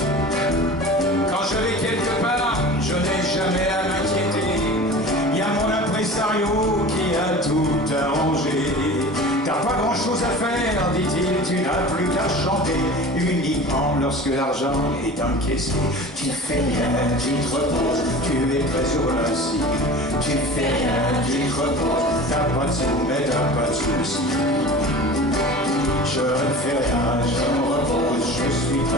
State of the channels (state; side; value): normal; both; correlation 0.37